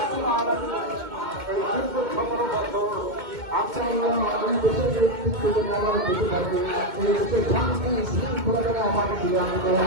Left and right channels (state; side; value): late; left; 2.2 ms